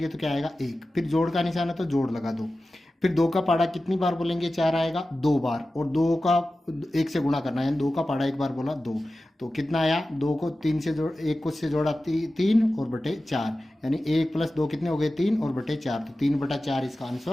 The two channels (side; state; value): both; normal; correlation 0.95